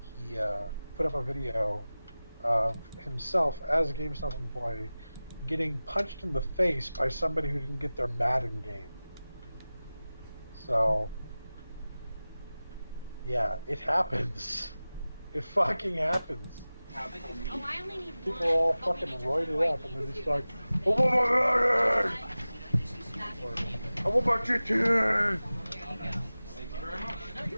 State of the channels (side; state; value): both; inverted; correlation -0.97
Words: he put up a video of himself as a GameStop employee getting punched in the face by somebody who didn't get their Madden game. So, yeah, it happens. It fucking happens. Oh, I only need People are all fucking roided up, and they're just like, I want my Madden! Or, I want my GTA! Thank you very much. No,